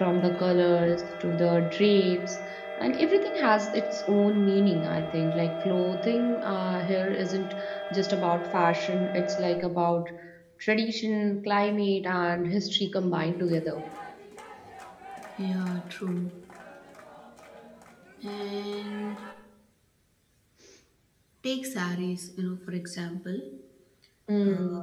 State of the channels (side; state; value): both; identical; correlation 1.00